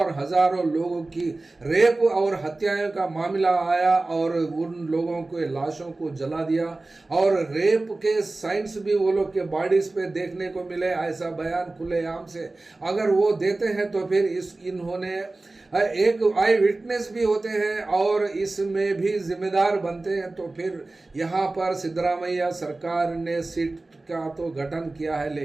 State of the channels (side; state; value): left; quieter; 3.1 dB